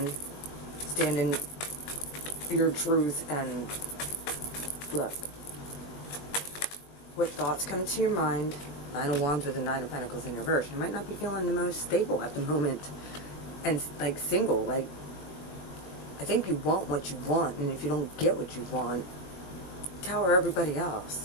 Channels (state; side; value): late; right; 20 ms